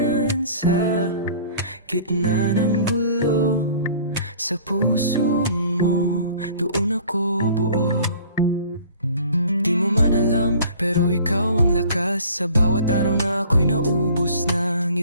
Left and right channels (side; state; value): both; inverted; correlation -0.48